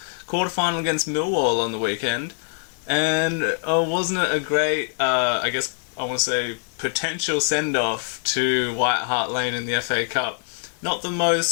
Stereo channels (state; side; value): silent; right; digital silence